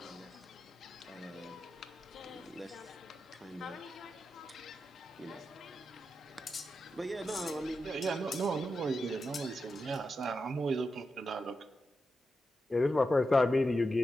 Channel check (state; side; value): normal; both; correlation 0.89